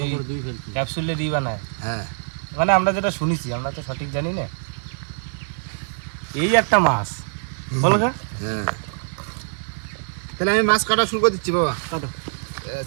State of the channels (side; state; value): left; silent; digital silence